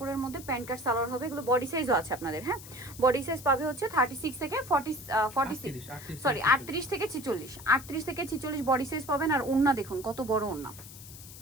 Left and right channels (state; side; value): noise; left; hiss, 16 dB below the sound